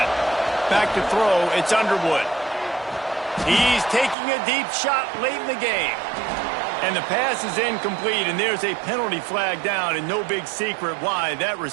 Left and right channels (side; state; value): left; drops out; at 4.2 s